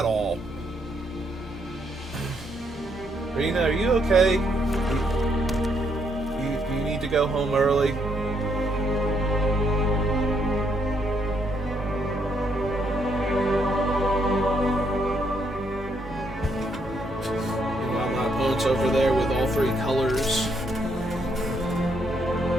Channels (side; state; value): both; normal; correlation 0.74